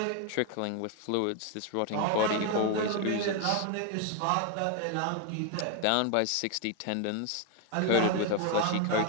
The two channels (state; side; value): different; both; correlation 0.01